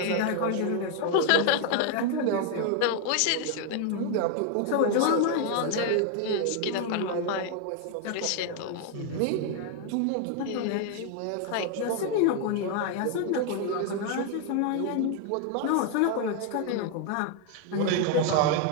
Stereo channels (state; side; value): different; both; correlation 0.01